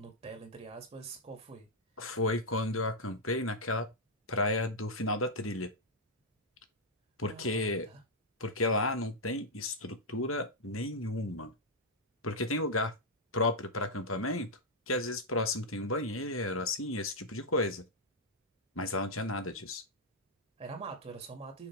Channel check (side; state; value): both; normal; correlation -0.05